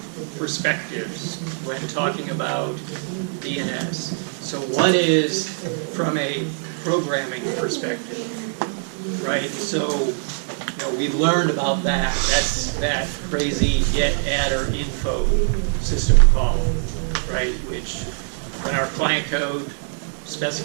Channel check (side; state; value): left; silent; digital silence